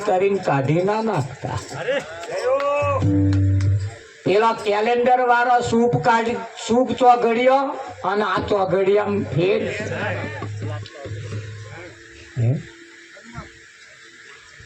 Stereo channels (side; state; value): both; identical; correlation 1.00